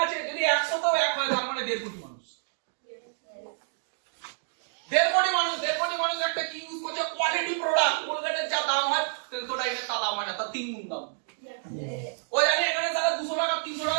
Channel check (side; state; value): left; silent; digital silence